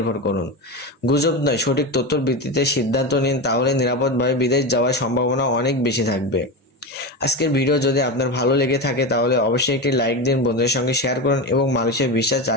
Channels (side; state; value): both; normal; correlation 0.19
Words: করুন। গুজব নয়, সঠিক তথ্যের ভিত্তিতে সিদ্ধান্ত নিন, তাহলে নিরাপদভাবে বিদেশ যাওয়ার সম্ভাবনা অনেক বেশি থাকবে। আজকের ভিডিও যদি আপনার ভালো লেগে থাকে তাহলে অবশ্যই একটি লাইক দিন, বন্ধুদের সঙ্গে শেয়ার করুন এবং মালয়েশিয়া ভিসা